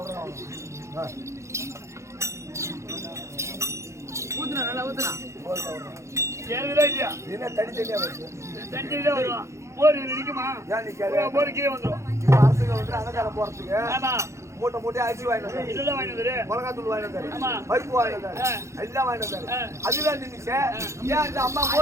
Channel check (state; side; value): late; left; 0.14 ms